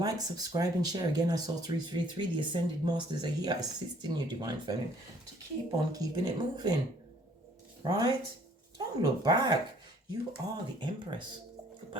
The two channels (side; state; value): both; normal; correlation 0.59